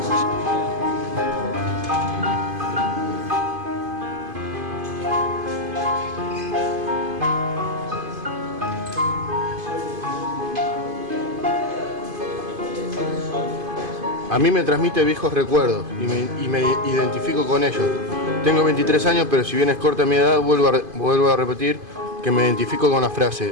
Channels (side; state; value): left; late; 2.5 ms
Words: A mí me transmite viejos recuerdos y me identifico con ellos. Tengo 23 años, pero si bien es corta mi edad, vuelvo a repetir que me identifico con la